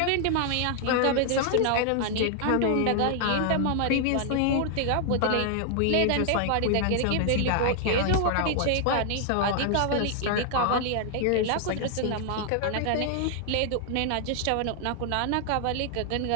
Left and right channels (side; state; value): both; different; correlation 0.00